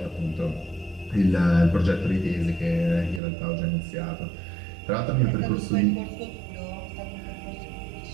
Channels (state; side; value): drops out; left; at 3.2 s